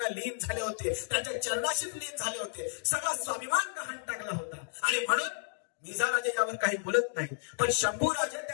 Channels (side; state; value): right; silent; digital silence